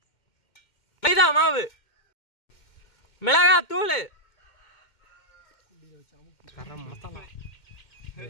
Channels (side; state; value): right; late; 2.1 ms